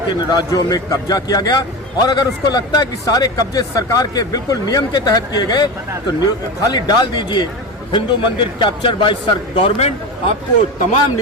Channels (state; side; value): normal; both; correlation 0.24